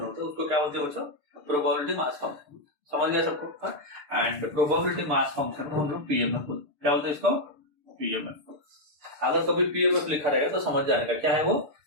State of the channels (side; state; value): left; late; 6.8 ms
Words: होता है उसको क्या बोलते हैं बच्चों, प्रोबेबिलिटी मास फंक्शन। समझ गया सबको। एंड प्रोबेबिलिटी मास फंक्शन को हम लोग पीएमएफ बोलते हैं। क्या बोलते हैं इसको, पीएमएफ। अगर कभी पीएमएफ लिखा रहेगा तो समझ जाएगा क्या है वो,